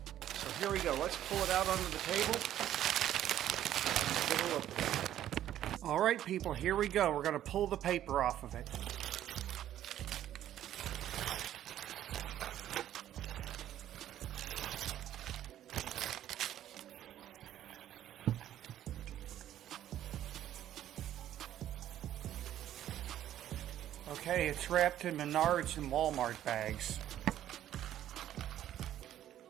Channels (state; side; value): quieter; left; 11.8 dB